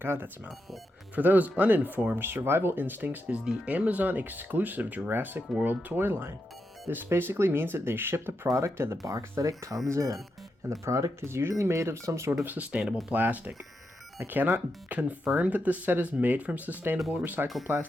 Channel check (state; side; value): normal; both; correlation 0.85